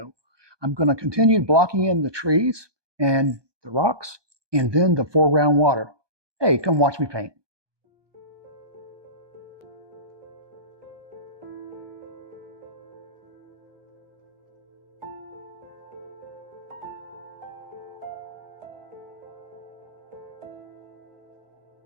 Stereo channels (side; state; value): left; late; 1.2 ms